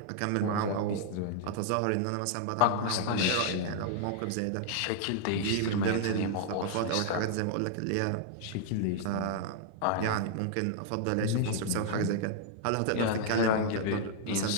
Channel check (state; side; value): different; both; correlation -0.01